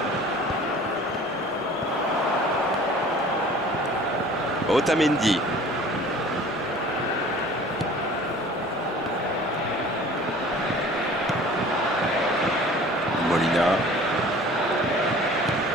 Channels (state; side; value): normal; both; correlation 0.47